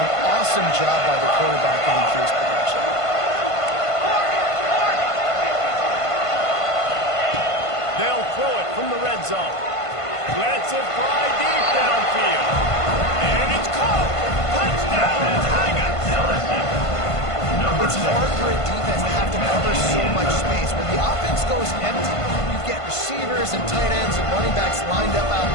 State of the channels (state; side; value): late; right; 1.5 ms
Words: Awesome job by the quarterback in his production. They'll throw it from the red zone. Lets it fly deep downfield. And it's caught. Touchdown, Tigers. It's hard for a defense to have to cover so much space. When the offense goes empty, you get receivers and tight ends and running backs lined up out